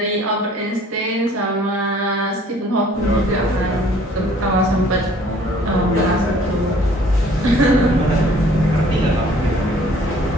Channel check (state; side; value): normal; both; correlation 0.56